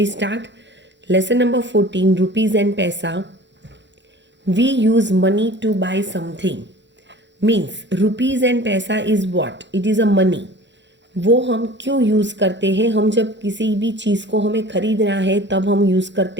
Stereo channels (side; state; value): left; late; 0.52 ms